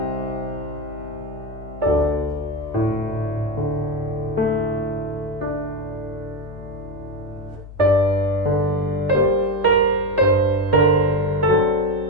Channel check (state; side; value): normal; both; correlation 0.14